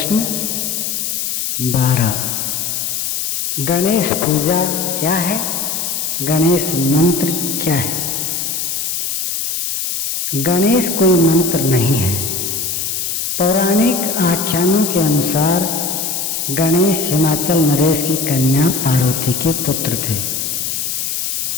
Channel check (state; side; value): noise; left; hiss, 1 dB below the sound